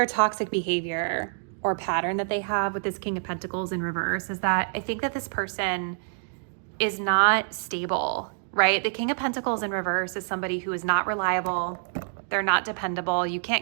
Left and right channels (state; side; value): silent; left; digital silence